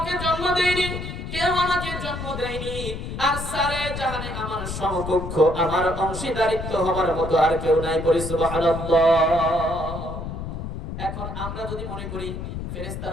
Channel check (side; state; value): left; noise; rumble, 7 dB below the sound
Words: জন্ম দেইনি, কেউ আমাকে জন্ম দেয়নি, আর সারে জাহানে আমার সমকক্ষ আমার অংশীদারিত্ব হবার মতো আর কেউ নাই। পড়ি সুবহানাল্লাহ। এখন আমরা যদি মনে করি